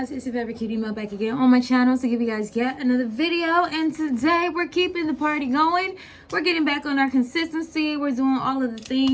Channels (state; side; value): identical; both; correlation 1.00